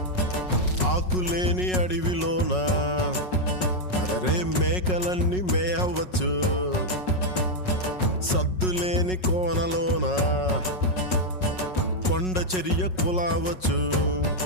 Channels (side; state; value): right; late; 5.4 ms